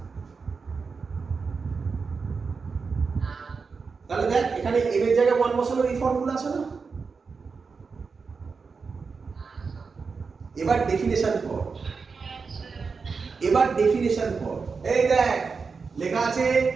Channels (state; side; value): quieter; left; 5.0 dB